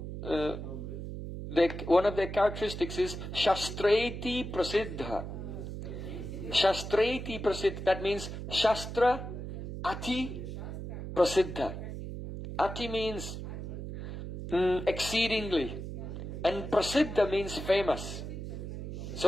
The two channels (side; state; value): right; noise; hum, 7 dB below the sound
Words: one of their characteristics is Shastreti Prasiddha. Shastreti Prasiddha, that means Shastra Ati Prasiddha. Ati means exceedingly, and Prasiddha means famous.